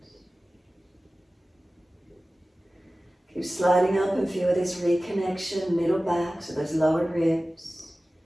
Keep sliding up and feel this reconnection, middle back, so those lower ribs,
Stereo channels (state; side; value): normal; both; correlation 0.96